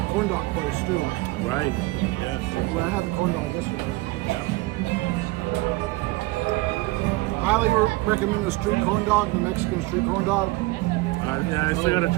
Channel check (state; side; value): quieter; left; 20.8 dB